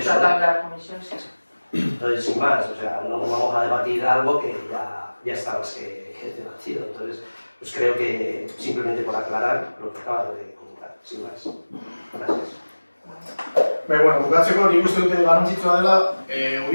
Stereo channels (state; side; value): inverted; both; correlation -1.00